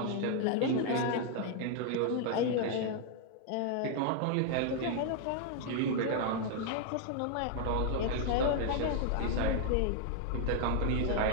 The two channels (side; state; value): both; different; correlation 0.00